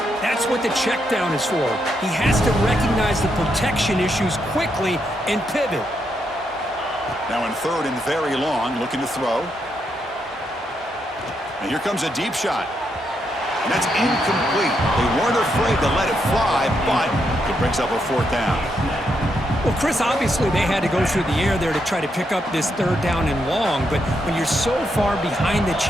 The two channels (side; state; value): both; normal; correlation 0.80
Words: that's what the check down is for. He has to recognize the protection issues quickly and pivot. Now in 3rd and very long, looking to throw. And here comes a deep shot. And that's incomplete. They weren't afraid to let it fly, but it brings up a 4th down. Well, Chris, obviously they had to go through the air there to try to pick up this 3rd down and long, but when you're so far behind the